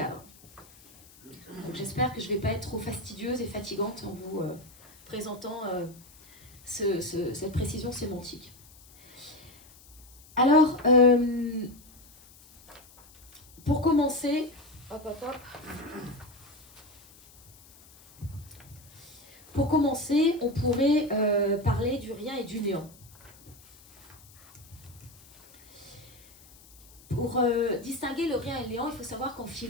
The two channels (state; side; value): noise; left; hiss, 24 dB below the sound